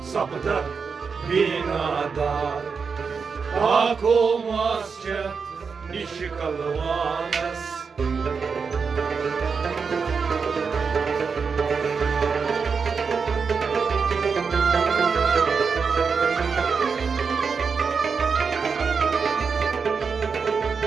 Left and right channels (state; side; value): quieter; left; 5.5 dB